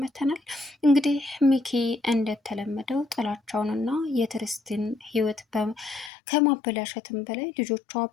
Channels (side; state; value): right; drops out; at 6.1 s